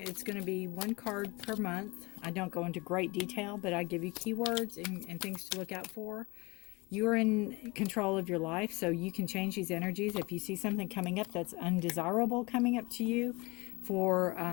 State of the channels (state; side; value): quieter; right; 25.0 dB